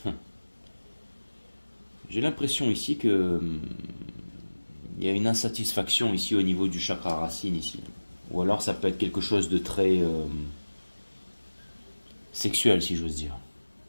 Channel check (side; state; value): both; inverted; correlation -1.00